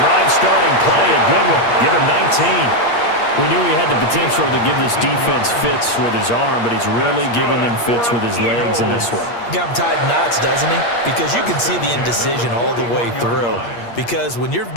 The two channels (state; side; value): late; right; 8.5 ms